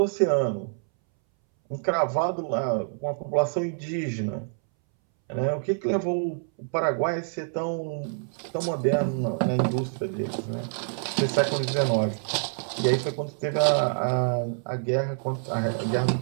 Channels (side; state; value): left; silent; 60 dB below the other